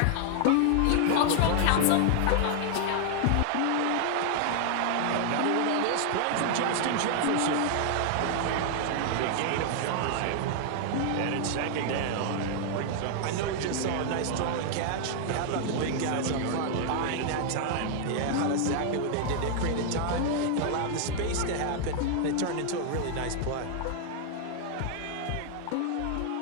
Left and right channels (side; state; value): both; different; correlation 0.00